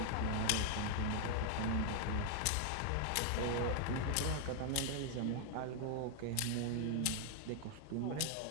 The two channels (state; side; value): different; both; correlation -0.01